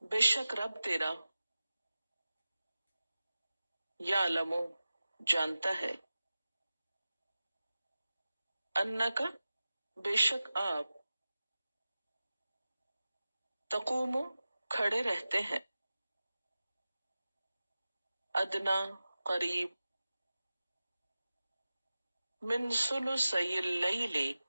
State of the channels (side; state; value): both; inverted; correlation -0.95